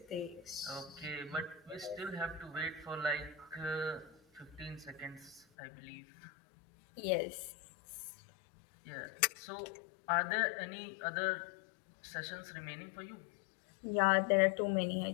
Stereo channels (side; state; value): right; drops out; at 5.5 s